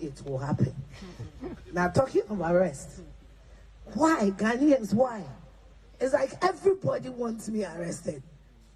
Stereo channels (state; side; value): identical; both; correlation 1.00